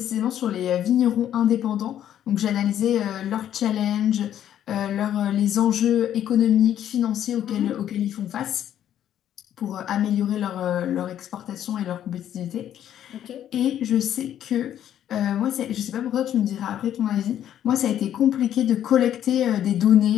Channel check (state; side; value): quieter; right; 10.7 dB